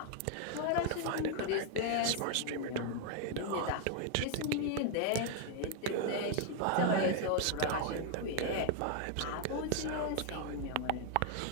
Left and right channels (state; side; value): different; both; correlation 0.00